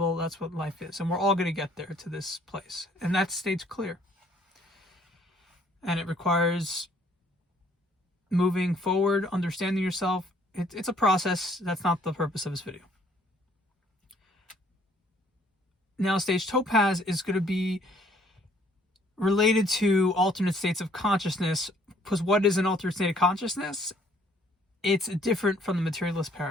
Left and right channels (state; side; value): normal; both; correlation 0.62